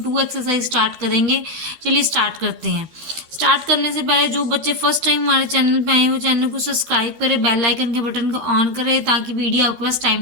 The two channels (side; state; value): left; late; 12 ms